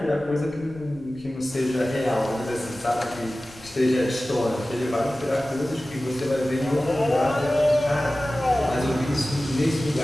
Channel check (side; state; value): left; noise; rumble, 24 dB below the sound